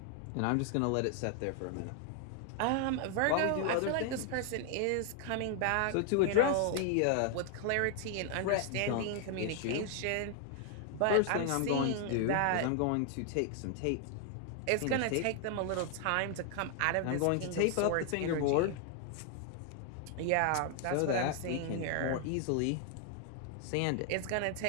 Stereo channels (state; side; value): different; both; correlation 0.00